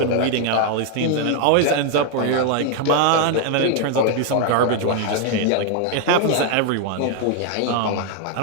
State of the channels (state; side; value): different; both; correlation 0.00